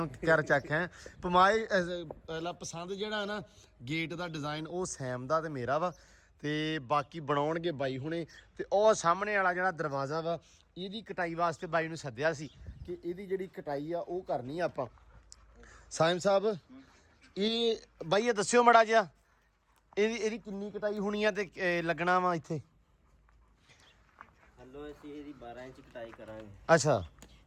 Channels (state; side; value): identical; both; correlation 1.00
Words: ਕਰ ਚੱਕ ਹੈ ਪਮਾਈ। ਪਹਿਲਾ ਪਸੰਦ ਜਿਹੜਾ ਨਾ ਗੇਟ ਦਾ ਡਿਜ਼ਾਈਨ ਉਹ ਸੈਮ ਦਾ ਤੇ ਮੇਰਾ ਵਾ, ਤੇ ਬਾਕੀ ਬਣਾਉਣਗੇ ਬਾਈ ਹੁਣੇ। ਤੇ ਉਹ ਸਾਹਮਣੇ ਵਾਲਾ ਜਿਹੜਾ ਦਰਵਾਜ਼ਾ ਵਾ ਇਹਦੀ ਕਟਾਈ ਵਾਸਤੇ ਬਾਈ ਨੂੰ ਸੱਦਿਆ ਸੀ ਕਿ ਇਹਦੀ ਜਿਹੜੀ ਕਟਾਈ ਆ ਉਹ ਕਰਨੀ ਆ ਆਪਾਂ। ਸਾਇਮ ਸਾਹਿਬ ਇਹ ਬਾਈ ਇਹ ਦੱਸਿਓ ਮੜਾ ਜਿਹਾ ਇਹਦੀ ਕਿੰਨੀ ਕਟਾਈ ਹੋਣੀ ਆ ਤੇ ਲੱਗਣਾ ਵਾ ਇੱਥੇ? ਹਲੋ ਅਸੀਂ ਇਹਦੀ 12 ਇੰਚ ਕਟਾਈ ਕਰਾਂਗੇ। ਅੱਛਾ